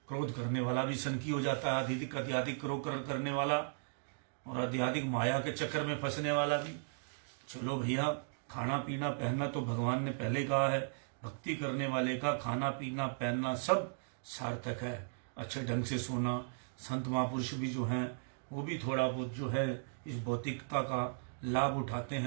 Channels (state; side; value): silent; left; digital silence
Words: क्रोध करने वाला भी सनकी हो जाता है, अत्यधिक क्रोध करने वाला और अत्यधिक माया के चक्कर में फंसने वाला भी। चलो भैया, खाना पीना पहनना तो भगवान ने पहले ही कहा है, भक्ति करने वाले का खाना पीना पहनना सब सार्थक है। अच्छे ढंग से सोना, संत महापुरुष भी जो हैं वो भी थोड़ा बहुत जो है इस भौतिकता का लाभ उठाते